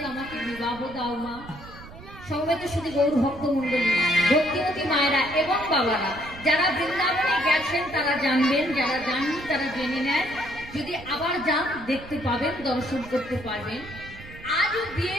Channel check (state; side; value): noise; right; rumble, 16 dB below the sound